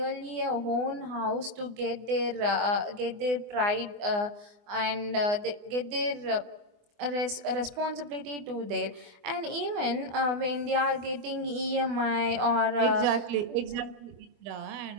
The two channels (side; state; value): left; late; 24 ms